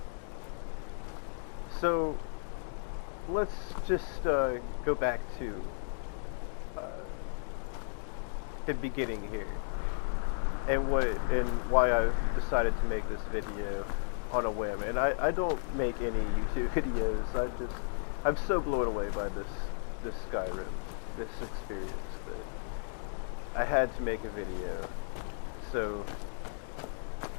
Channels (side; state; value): right; silent; digital silence